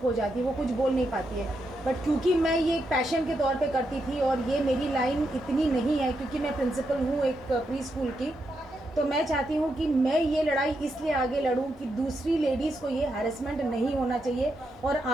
हो जाती है, वो कुछ बोल नहीं पाती है। बट क्योंकि मैं ये एक पैशन के तौर पे करती थी और ये मेरी लाइन इतनी नहीं है, क्योंकि मैं प्रिंसिपल हूँ एक प्री स्कूल की, तो मैं चाहती हूँ कि मैं ये लड़ाई इसलिए आगे लड़ूँ कि दूसरी लेडीज़ को ये हैरेसमेंट नहीं होना चाहिए और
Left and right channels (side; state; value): both; normal; correlation 0.83